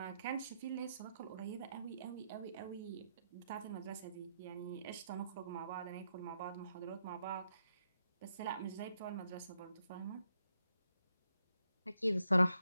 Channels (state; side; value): inverted; both; correlation -0.80